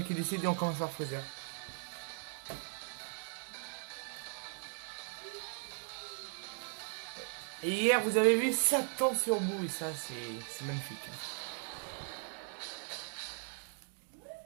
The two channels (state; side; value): silent; left; 52 dB below the other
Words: qui décide et on commence par Freezer. Et hier vous avez vu Satan sur bout et ça c'est magnifique, hein.